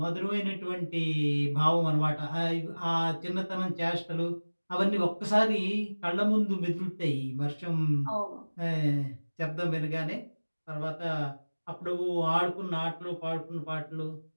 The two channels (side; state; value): both; inverted; correlation -1.00